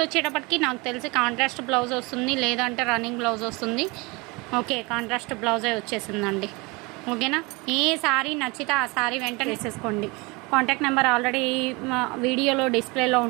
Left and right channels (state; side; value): quieter; left; 26.1 dB